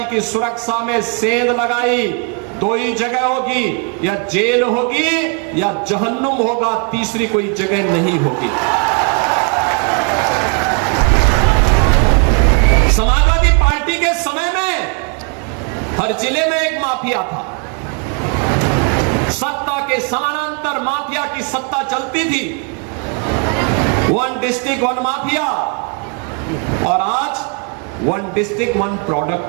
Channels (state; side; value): quieter; left; 36.7 dB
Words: की सुरक्षा में सेंध लगाई। 2 ही जगह होगी, या जेल होगी या जहन्नुम होगा, तीसरी कोई जगह नहीं होगी। समाजवादी पार्टी के समय में हर जिले में एक माफिया था। सत्ता के समानांतर माफिया की सत्ता चलती थी। 1 डिस्ट्रिक्ट 1 माफिया, और आज 1 डिस्ट्रिक्ट 1